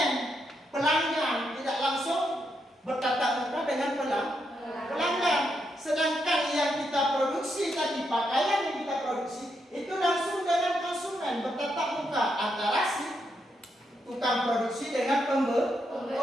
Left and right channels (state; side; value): normal; both; correlation 0.81